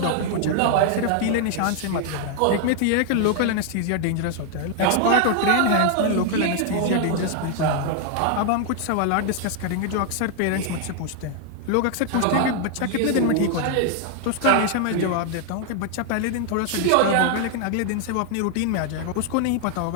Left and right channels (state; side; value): different; both; correlation 0.00